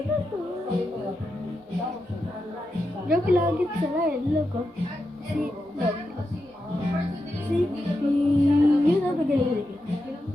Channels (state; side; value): normal; both; correlation 0.87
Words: Joke lagi sila eh, logo. Si, yun ang tagalilig.